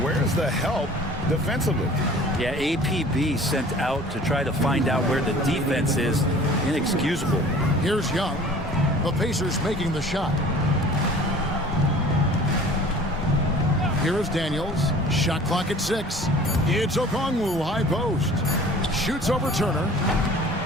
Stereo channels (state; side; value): normal; both; correlation 0.46